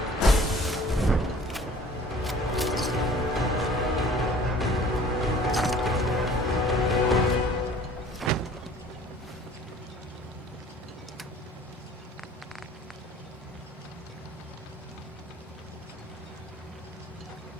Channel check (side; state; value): both; normal; correlation 0.49